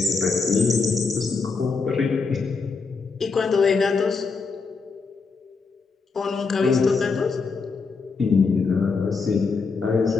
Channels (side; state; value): right; quieter; 4.6 dB